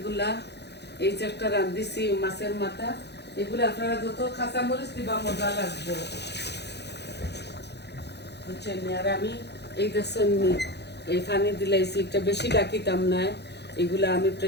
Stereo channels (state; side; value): late; right; 0.49 ms